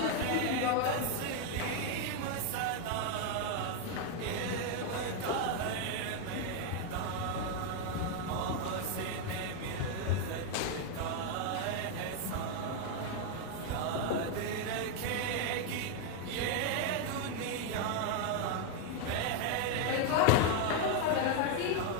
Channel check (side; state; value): both; different; correlation 0.01